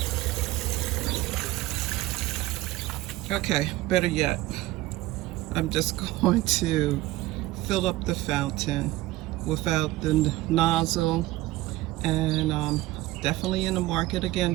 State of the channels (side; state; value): left; quieter; 17.7 dB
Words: Okay, better yet, I'm just going to fill up the fountain without the nozzle, and definitely in the market